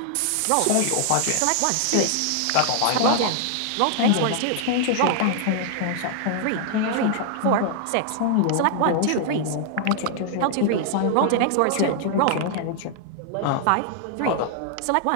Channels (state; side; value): different; both; correlation 0.00